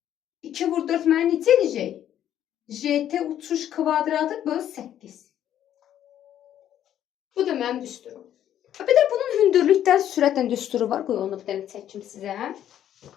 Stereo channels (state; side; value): quieter; right; 10.9 dB